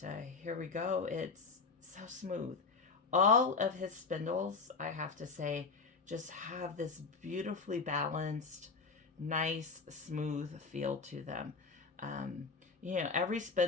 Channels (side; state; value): right; quieter; 4.7 dB